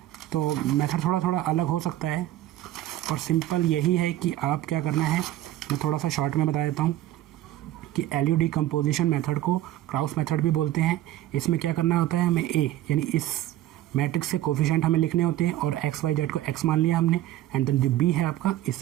तो मेथड थोड़ा अलग हो सकता है और सिंपल यही है कि आप क्या करना है, मैं थोड़ा सा शॉर्ट में बता देता हूँ कि एलयू डिकम्पोजिशन मेथड को क्राउस मेथड भी बोलते हैं। इसमें क्या करना होता है, हमें ए यानी इस मैट्रिक्स से कोफिशिएंट हमें लिखने होते हैं और एक्स वाई जेड को एक्स मान लिया हमने एंड देन जो बी है आपका इस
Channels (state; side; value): quieter; left; 14.0 dB